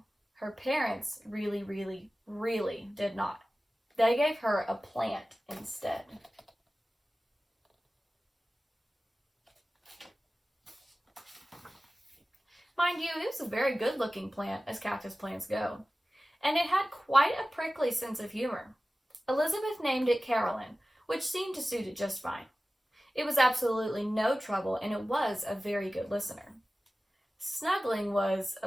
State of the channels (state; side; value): normal; both; correlation 0.96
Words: Her parents really did not. They gave her a plant instead. Mind you, it was a very good-looking plant, as cactus plants go, and it had quite a prickly sense of humor. Elizabeth named it Carolyn, which seemed to suit it just fine. It was absolutely no trouble, and it was a very good listener. Snuggling was